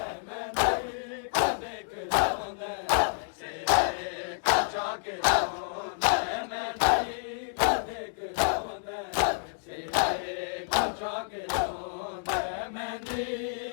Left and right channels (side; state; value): right; silent; digital silence